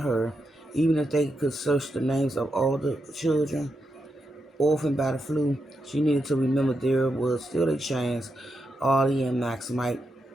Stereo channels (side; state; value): both; normal; correlation 0.85